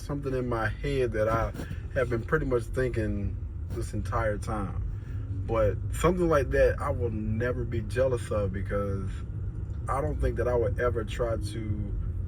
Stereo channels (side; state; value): both; identical; correlation 1.00